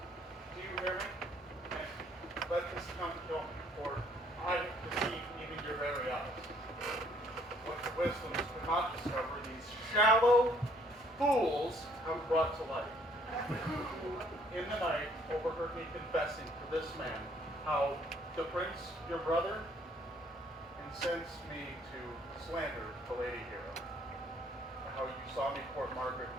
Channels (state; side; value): normal; both; correlation 0.63